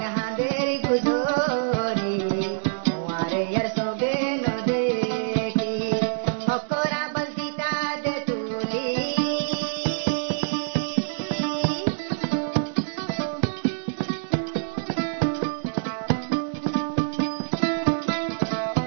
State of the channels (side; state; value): left; silent; digital silence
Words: হাঁদের গুজরি তোমারে ইয়ার সোগে ন দেখি হকরা বলদিতা দে তুলি